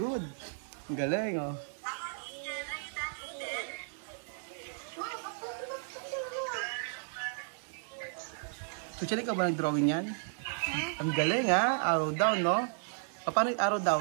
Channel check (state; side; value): silent; left; digital silence